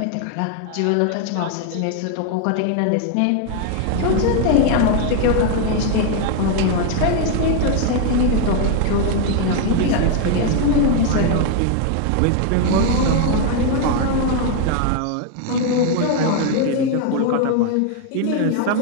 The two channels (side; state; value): both; different; correlation 0.01